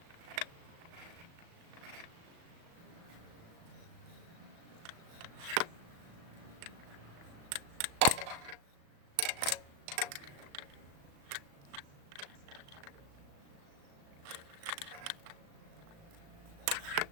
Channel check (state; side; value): late; left; 36 ms